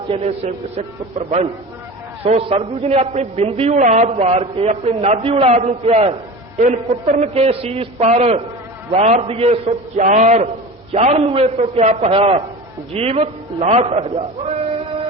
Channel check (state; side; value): normal; both; correlation 0.32